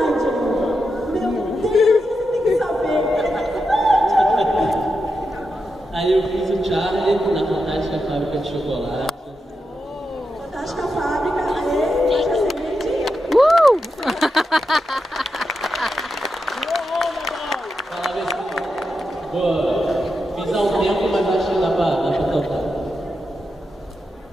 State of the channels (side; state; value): both; normal; correlation 0.87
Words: Meu Deus, você tem que saber. Aí eu fiz o Charlie na Fantástica Fábrica de Chocolate. Fantástica Fábrica, aê, já seguinte. Boa. Fiz há um tempo, mas acho que dá pra cantar.